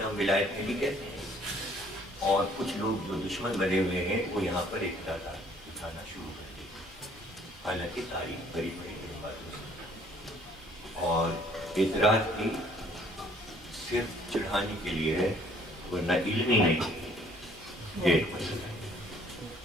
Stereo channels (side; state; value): both; normal; correlation 0.59